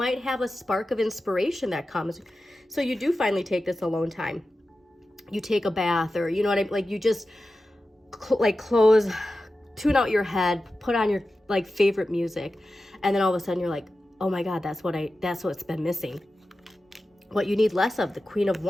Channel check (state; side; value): normal; both; correlation 0.93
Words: have a spark of inspiration that comes. So you do finally take this alone time. You take a bath, or you know what I mean? Like you just tune out your head, put on your like favorite music. And then all of a sudden you're like, oh my God, that's what's been missing. What you need less of, the Queen of